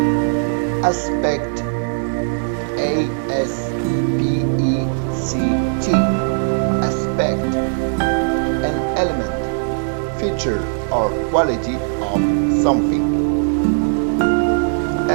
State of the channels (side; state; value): left; silent; digital silence